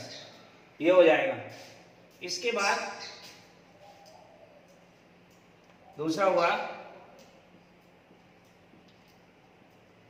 ये हो जाएगा। इसके बाद दूसरा हुआ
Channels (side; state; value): both; identical; correlation 1.00